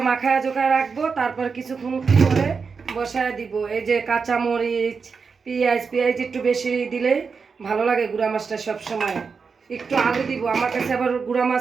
মাখায়া জোখায় রাখবো, তারপর কিছুক্ষণ করে বসায় দিব। এই যে কাঁচা মরিচ, পেঁয়াজ একটু বেশি দিলে ভালো লাগে গুঁড়া মাছটা সব সময়। একটু আলু দিব, আমার কাছে আবার গুঁড়া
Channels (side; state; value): left; quieter; 5.3 dB